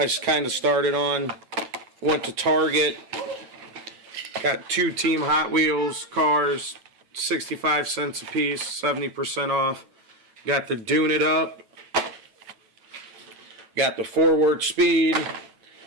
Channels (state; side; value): late; left; 9.1 ms